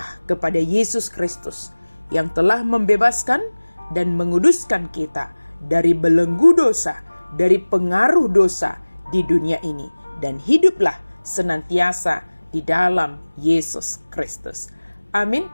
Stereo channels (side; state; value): both; inverted; correlation -1.00